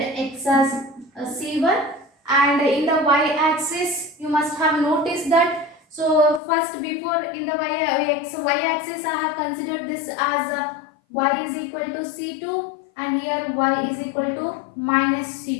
x as c1, and in the y axis you must have noticed that. So first, before in the y axis I have considered this as y is equal to c2, and here y is equal to minus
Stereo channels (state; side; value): drops out; right; at 6.4 s